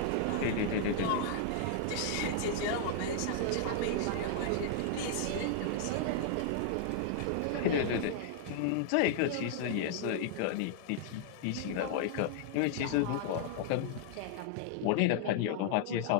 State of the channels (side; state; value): both; different; correlation -0.01